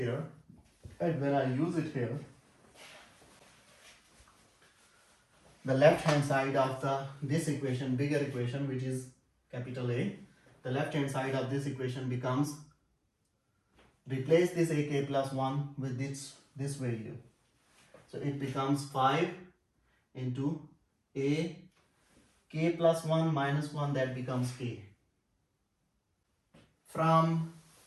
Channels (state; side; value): identical; both; correlation 1.00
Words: And when I use it here, the left hand side of this equation, bigger equation, which is capital A, the left hand side of this equation becomes, replace this ak plus 1 with this value. So it becomes 5 into a k plus 1 minus 1, that becomes k. From